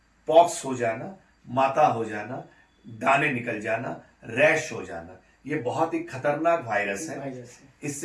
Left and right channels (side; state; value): both; identical; correlation 1.00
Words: पॉक्स हो जाना, माता हो जाना, दाने निकल जाना, रैश हो जाना, ये बहुत ही खतरनाक वायरस है।